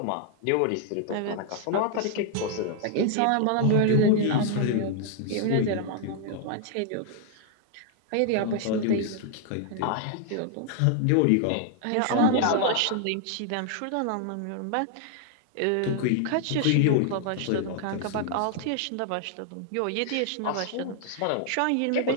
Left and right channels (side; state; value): both; different; correlation 0.00